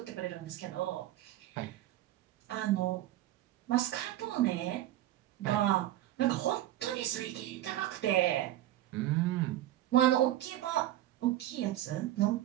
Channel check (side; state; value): left; quieter; 14.0 dB